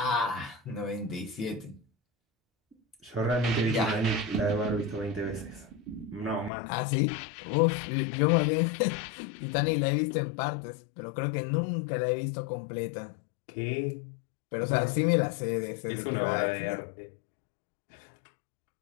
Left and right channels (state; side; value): drops out; right; at 6.5 s